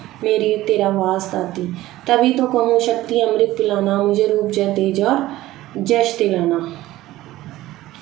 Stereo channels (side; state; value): left; quieter; 16.1 dB